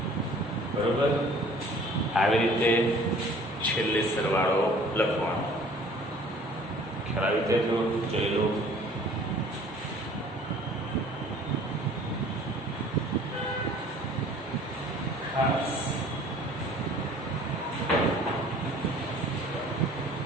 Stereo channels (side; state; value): both; normal; correlation 0.51